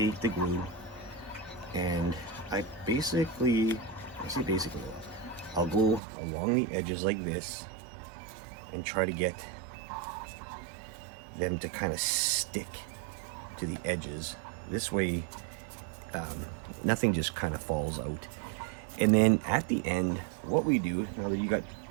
the glue and I say basically, I'll go along the edges like this and try to get them to kind of stick to the edges. This way, nothing just kind of falls out. And then at the end, what we do, now that you got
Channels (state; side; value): drops out; left; at 6.0 s